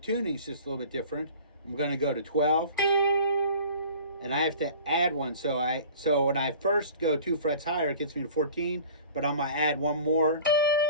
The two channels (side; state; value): both; inverted; correlation -0.44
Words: just a little bit different. I'm going to go to 12, and I have to add 1. So when I first go 2 frets higher, it gets me to 14, but I'm going to add 1 more.